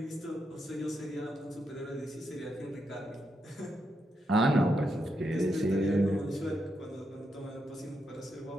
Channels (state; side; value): normal; both; correlation 0.83